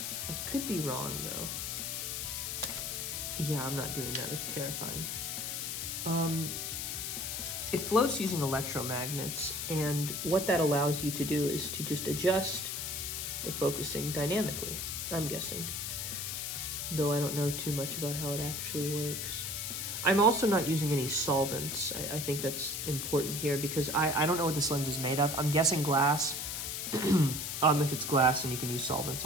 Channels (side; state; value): left; noise; hiss, 3 dB below the sound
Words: I could be wrong, though. Yeah, I'm not doing that. It's terrifying. It floats using electromagnets, and what that allows you to do is to just adjust the focusing dynamically, I'm guessing. Though I don't know too much about how it actually works. I'm also not using any solvents. I think that's important here because I don't know what this lens is made of. I'm guessing glass. If it's glass, then you can use solvents